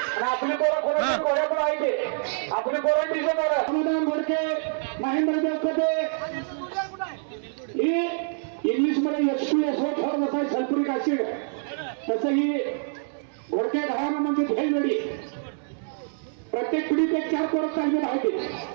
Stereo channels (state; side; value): silent; left; 61 dB below the other